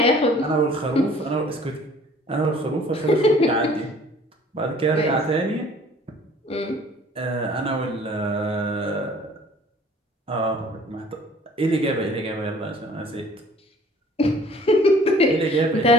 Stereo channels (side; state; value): both; normal; correlation 0.52